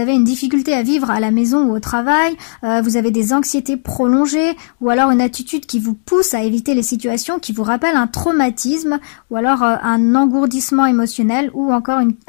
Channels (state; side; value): silent; right; digital silence